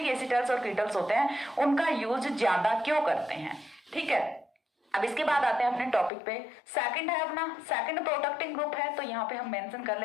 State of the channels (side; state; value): right; drops out; at 6.1 s